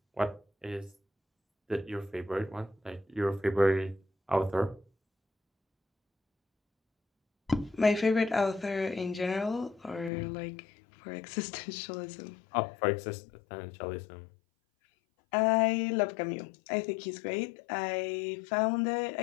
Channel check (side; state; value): right; drops out; at 10.1 s